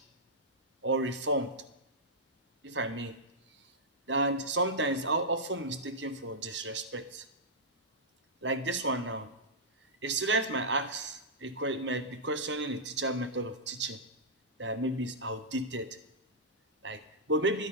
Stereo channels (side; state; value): both; normal; correlation -0.11